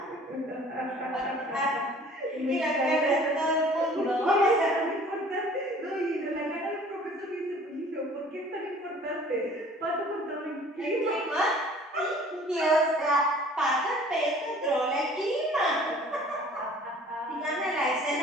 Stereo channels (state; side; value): normal; both; correlation 0.50